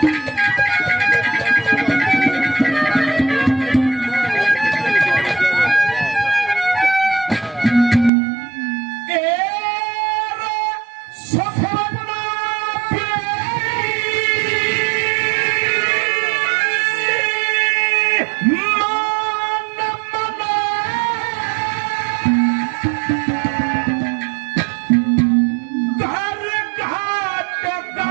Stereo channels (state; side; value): drops out; left; at 8.1 s